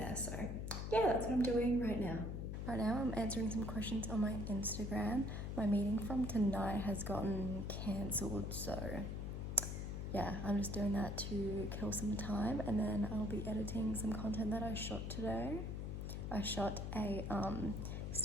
So yeah, that's what I'm doing right now. Right now I'm answering some questions on my Instagram. My meeting from tonight has gotten cancelled, so yeah, I'm just doing that to kill some time and then I'll be editing some content that I shot today. I shot a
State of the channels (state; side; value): noise; left; hum, 4 dB below the sound